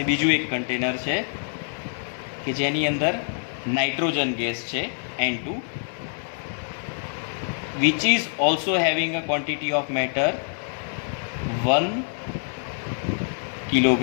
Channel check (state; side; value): silent; right; digital silence